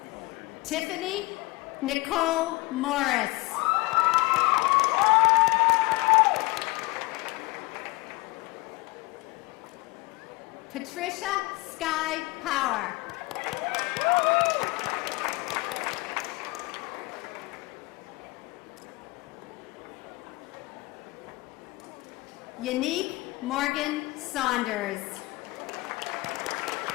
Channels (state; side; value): quieter; right; 23.3 dB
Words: Tiffany Nicole Morris. Patricia Sky Power. Unique Morgan Saunders.